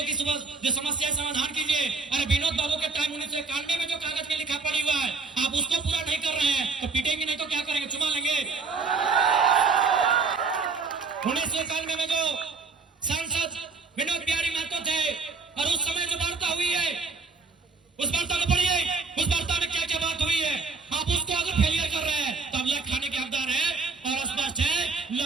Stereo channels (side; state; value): left; quieter; 4.5 dB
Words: की जो समस्या समाधान कीजिए। अरे विनोद बाबू के टाइम 1991 में जो कागज में लिखा पड़ी हुआ है, आप उसको पूरा नहीं कर रहे हैं तो पीटेंगे, नहीं तो क्या करेंगे? चुमा लेंगे। 1991 में जो सांसद विनोद बिहारी महतो थे और उस समय जो वार्ता हुई है, उस वार्ता को पढ़िए। उस वार्ता में क्या क्या बात हुई है। आप उसको अगर फेलियर कर रहे हैं तो आप लेख खाने के हकदार हैं। और स्पष्ट है